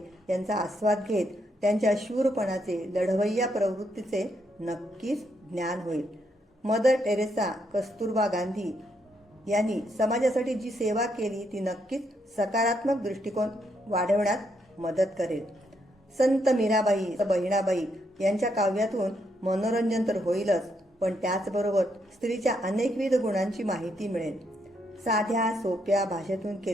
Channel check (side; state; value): both; normal; correlation 0.77